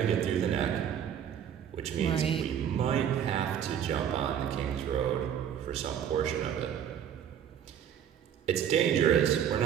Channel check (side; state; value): left; quieter; 9.1 dB